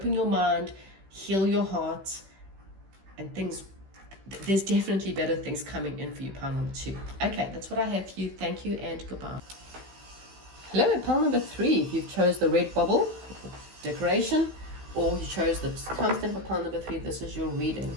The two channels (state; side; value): late; left; 16 ms